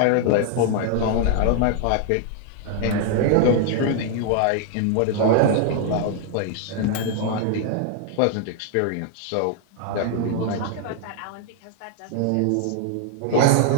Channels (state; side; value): different; both; correlation 0.00